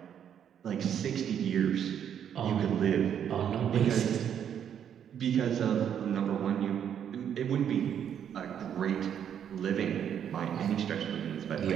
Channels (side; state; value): left; quieter; 8.9 dB